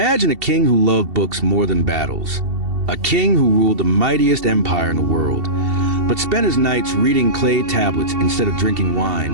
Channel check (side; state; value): left; late; 2.7 ms